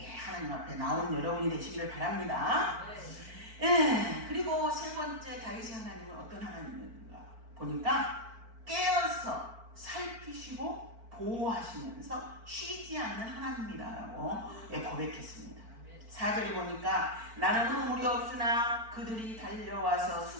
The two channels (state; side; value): late; left; 4.5 ms